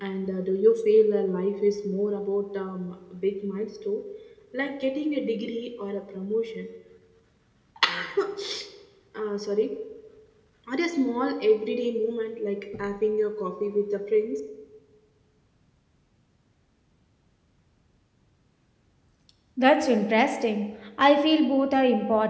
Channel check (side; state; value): both; identical; correlation 1.00